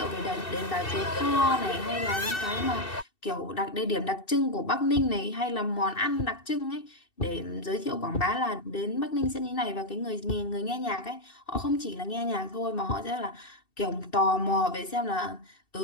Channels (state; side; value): late; right; 2.7 ms